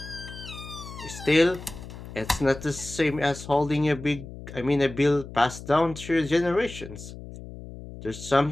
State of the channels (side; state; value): left; noise; hum, 13 dB below the sound